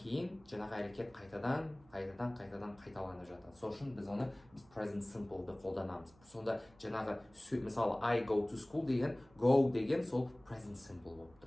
кейін жаңағы әрекет қайтадан қайталанып жатады. Сол үшін біз оны present simple'ды қолданамыз. Сонда жаңағы мысалы I go to school деген, go деген сол present simple болып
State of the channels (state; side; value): noise; right; hum, 27 dB below the sound